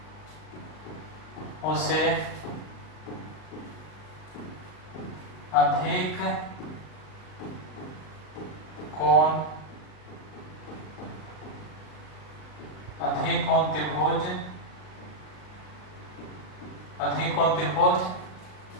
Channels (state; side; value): late; right; 39 ms